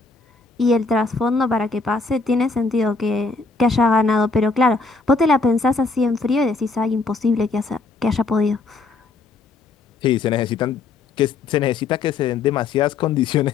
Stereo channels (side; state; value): right; quieter; 3.9 dB